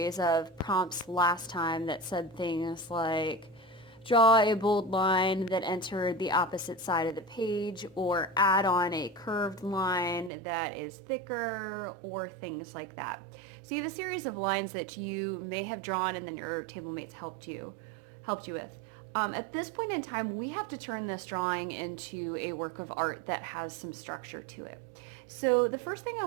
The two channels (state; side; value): drops out; left; at 10.3 s